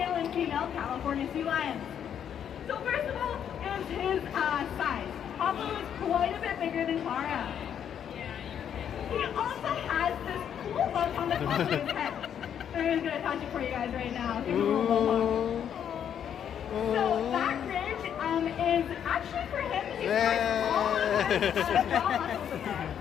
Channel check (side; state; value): right; quieter; 8.9 dB